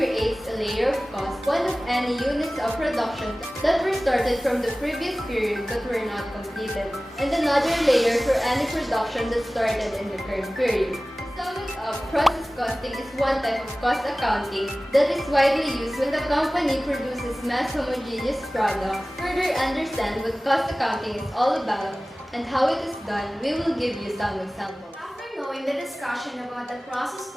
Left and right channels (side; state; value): both; normal; correlation 0.97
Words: a layer of cost, one of any units of production that were started from the previous period but were not completed, and another layer for any production that started in the current period. To sum it up, process costing is one type of cost accounting that is widely used when the company produces mass homogeneous products. To further understand what cost accounting is all about and how it is done, we will give you some examples. After knowing the discussion about the process